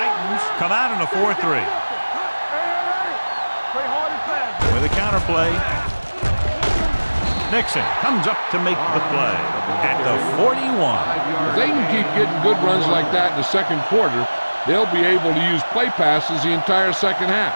come out in a 4-3. With a counter play. Nixon comes up to make the play at the 41. If they can keep getting good runs like that in the second quarter, they'll be able to use play passes the entire second half,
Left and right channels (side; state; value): both; inverted; correlation -1.00